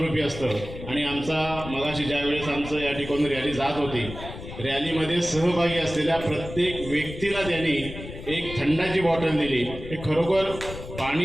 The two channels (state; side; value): noise; left; rumble, 11 dB below the sound